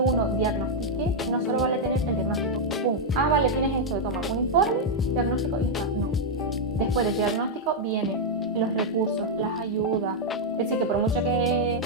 uno diagnostique, no solo vale tener el diagnóstico. ¡Pum! Ah, vale, tienes esto, toma un informe, diagnóstico y ya está. No. Después del diagnóstico vienen los recursos, las ayudas. Es decir, que por mucho que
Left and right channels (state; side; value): normal; both; correlation -0.02